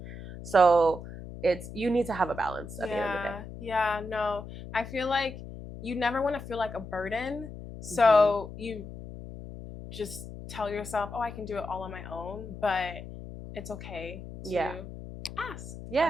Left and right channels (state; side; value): noise; left; hum, 11 dB below the sound